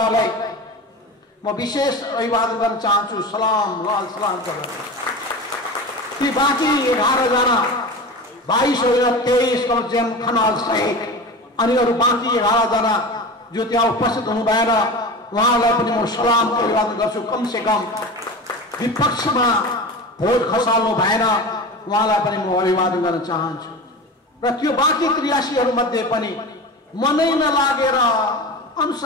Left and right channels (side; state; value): both; normal; correlation 0.30